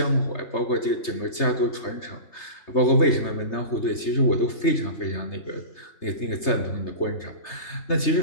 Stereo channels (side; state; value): right; late; 3.3 ms